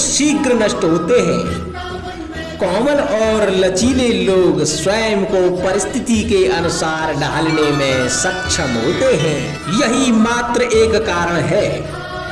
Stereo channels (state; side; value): identical; both; correlation 1.00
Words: नष्ट होते हैं, कोमल और लचीले लोग स्वयं को परिस्थिति के अनुसार ढालने में सक्षम होते हैं। यही मात्र एक कारण है।